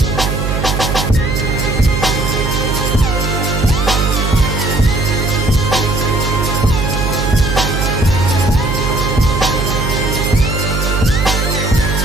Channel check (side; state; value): right; noise; hum, 1 dB below the sound